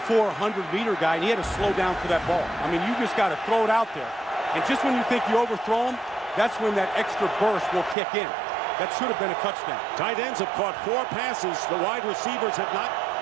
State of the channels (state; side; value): drops out; left; at 8.0 s